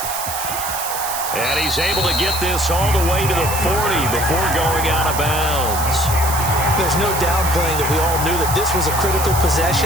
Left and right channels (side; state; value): right; noise; hiss, 6 dB below the sound